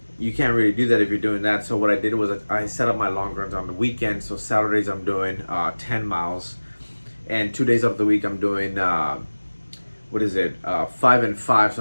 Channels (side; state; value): both; inverted; correlation -1.00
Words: You can't really do that if you're doing that. So what I did was I set up my long runs on the weekend. So Saturdays I'm doing 10 miles, and 2 days of the week I'm doing 5 and 5,